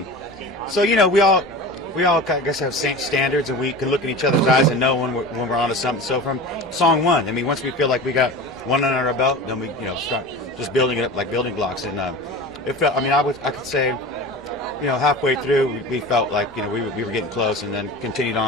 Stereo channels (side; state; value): both; normal; correlation 0.33